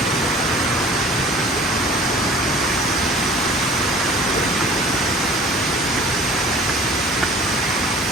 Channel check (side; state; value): both; normal; correlation 0.47